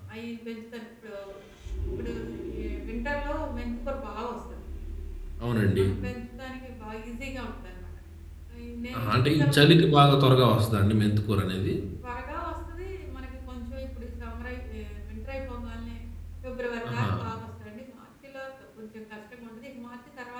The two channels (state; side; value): identical; both; correlation 1.00